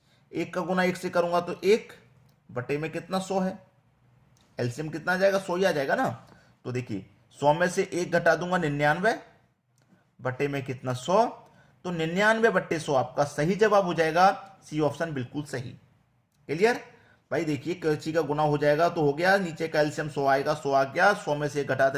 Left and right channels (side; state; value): both; identical; correlation 1.00